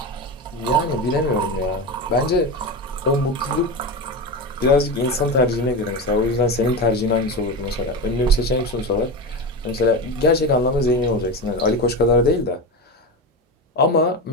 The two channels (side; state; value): both; normal; correlation 0.20